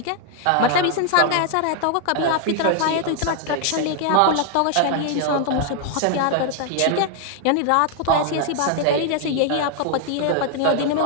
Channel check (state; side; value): different; both; correlation 0.00